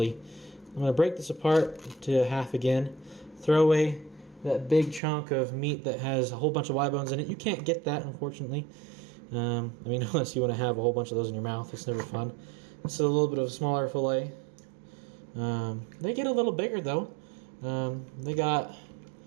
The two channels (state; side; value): drops out; left; at 5.0 s